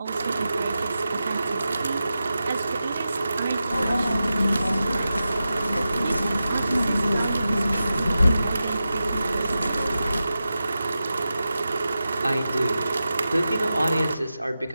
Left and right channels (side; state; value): both; inverted; correlation -0.92